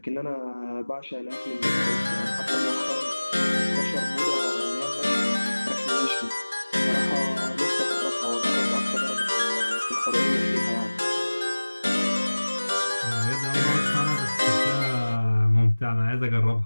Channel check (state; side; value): inverted; both; correlation -1.00